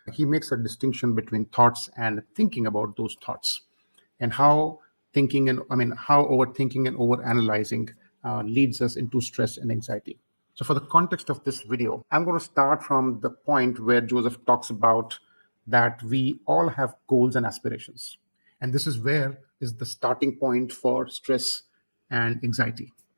He makes a distinction between thoughts and thinking about those thoughts, and how how overthinking and overanalyzing leads us into stress and anxiety. So, for the context of this video, I'm going to start from the point where Joseph talks about that we all have goals and aspirations. And this is where is the starting point for stress and anxiety.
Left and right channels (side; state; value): both; inverted; correlation -1.00